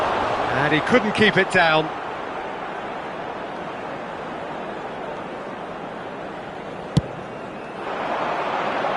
And he couldn't keep it down.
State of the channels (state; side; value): identical; both; correlation 1.00